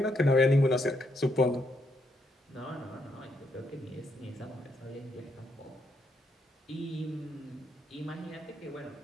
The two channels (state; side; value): normal; both; correlation 0.77